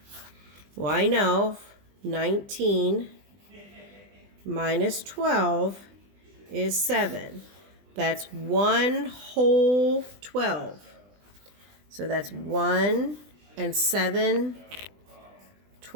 Well, I know 19 minus 12 is 7. That's 1 whole 12. So that's 1 and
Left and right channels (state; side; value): late; left; 20 ms